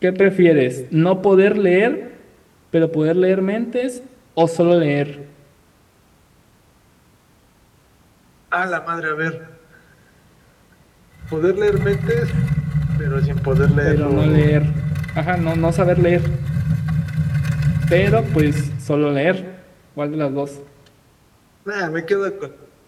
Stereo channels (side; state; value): both; identical; correlation 1.00